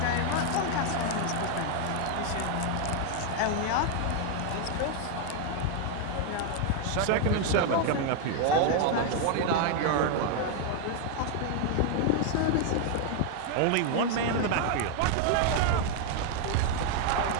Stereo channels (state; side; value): different; both; correlation 0.00